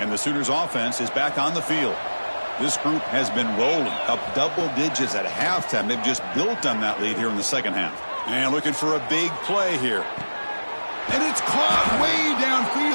the Sooners offense is back on the field. This group has been rolling up double digits at halftime. They've just built on that lead here in the 2nd half. And looking for a big play here. And it's caught way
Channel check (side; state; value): both; inverted; correlation -1.00